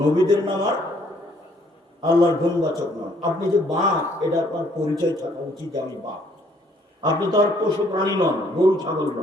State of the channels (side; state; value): both; normal; correlation 0.64